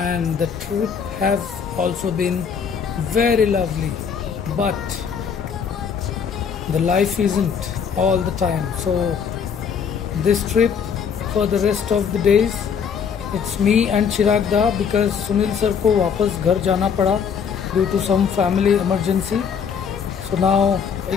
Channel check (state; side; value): quieter; right; 6.8 dB